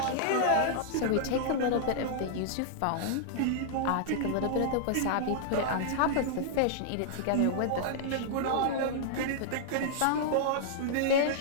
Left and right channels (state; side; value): different; both; correlation -0.01